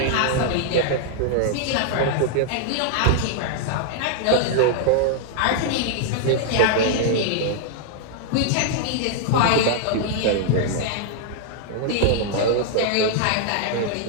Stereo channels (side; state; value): both; different; correlation -0.01